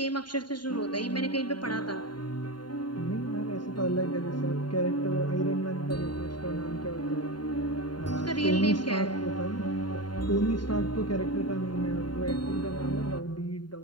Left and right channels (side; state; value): right; late; 0.71 ms